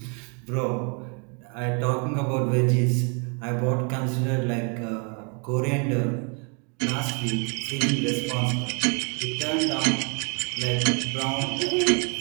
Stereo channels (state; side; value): quieter; left; 36.6 dB